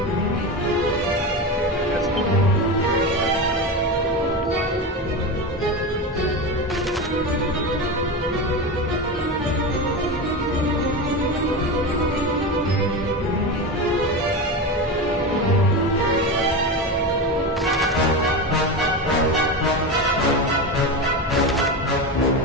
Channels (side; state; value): both; normal; correlation 0.21